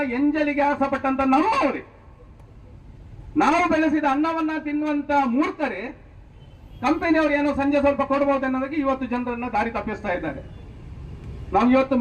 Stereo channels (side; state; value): both; identical; correlation 1.00